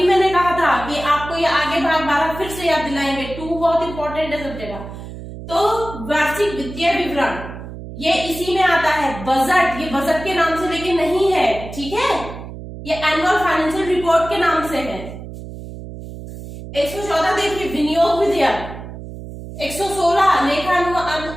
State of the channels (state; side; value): noise; right; hum, 12 dB below the sound